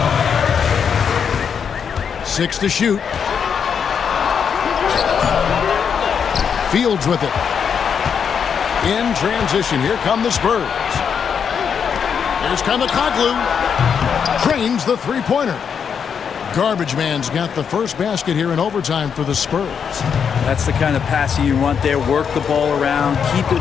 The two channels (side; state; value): right; quieter; 7.1 dB